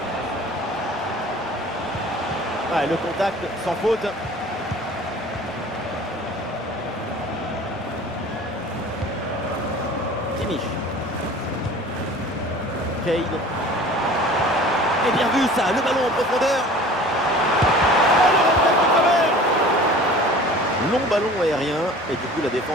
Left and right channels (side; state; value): both; normal; correlation 0.44